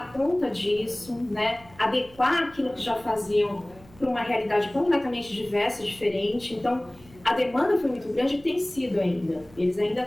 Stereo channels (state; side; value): noise; right; hum, 24 dB below the sound